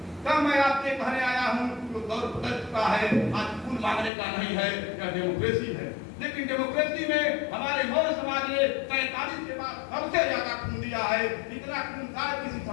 तब मैं आपके कहने आया हूँ तो दौर बदल चुका है, आज खून मांगने का नहीं है, यह डेमोक्रेसी है। लेकिन डेमोक्रेसी में हमारे मौर्य समाज ने 47 के बाद सबसे ज्यादा खून दिया है, इतना खून शायद किसी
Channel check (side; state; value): right; drops out; at 4.1 s